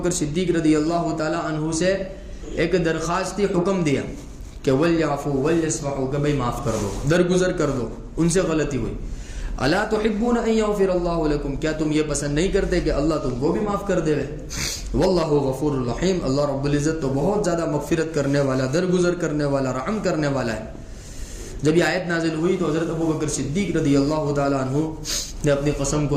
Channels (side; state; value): both; identical; correlation 1.00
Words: صدیق رضی اللہ تعالی عنہ سے ایک درخواستی حکم دیا کہ ولیعفوا ولیصفحوا، کہ بھائی معاف کر دو، درگزر کر دو، ان سے غلطی ہوئی۔ الا تحبون ان یغفر اللہ لکم، کیا تم یہ پسند نہیں کرتے کہ اللہ تم کو بھی معاف کر دے؟ واللہ غفور الرحیم، اللہ رب العزت تو بہت زیادہ مغفرت کرنے والا، درگزر کرنے والا، رحم کرنے والا ہے۔ جب یہ آیت نازل ہوئی تو حضرت ابو بکر صدیق رضی اللہ تعالی عنہ نے اپنی قسم